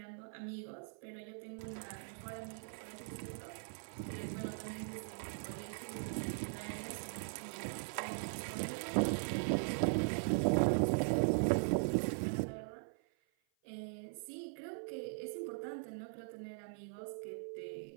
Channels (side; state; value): left; silent; 51 dB below the other